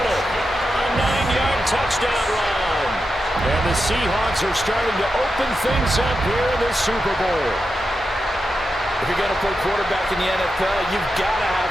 a 9-yard touchdown run. And the Seahawks are starting to open things up here in the Super Bowl. If you're going to play quarterback in the NFL, you've got to have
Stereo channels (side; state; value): both; normal; correlation 0.88